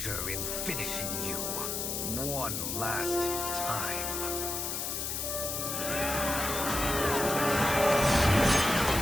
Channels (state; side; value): noise; left; hiss, 2 dB below the sound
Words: in finishing you one last time.